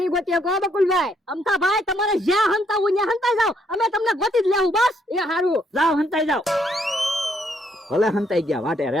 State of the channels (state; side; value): normal; both; correlation 0.71